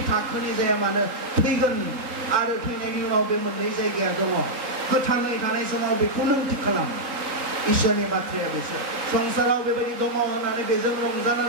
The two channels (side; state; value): left; late; 3.8 ms